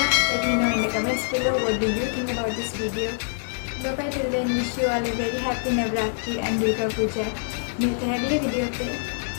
let me know in the comments below what do you think about this video. Bye bye till then, wish you all a very happy Navratri and Durga Puja. मिलते हैं अगले video पे.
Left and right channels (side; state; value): right; silent; 62 dB below the other